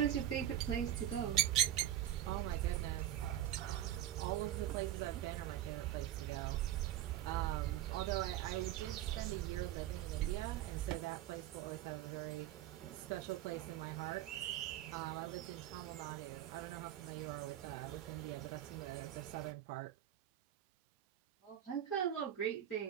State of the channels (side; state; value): left; quieter; 12.2 dB